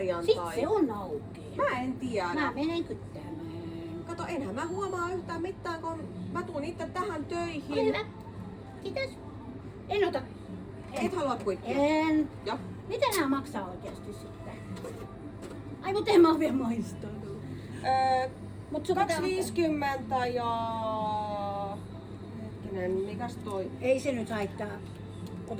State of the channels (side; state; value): both; identical; correlation 1.00